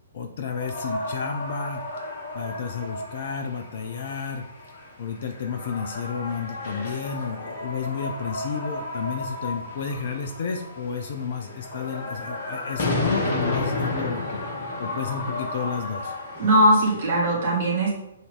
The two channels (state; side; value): inverted; both; correlation -0.52